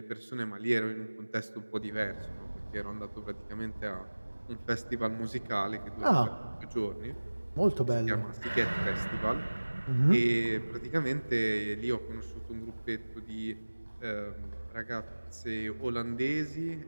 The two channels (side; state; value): both; inverted; correlation -1.00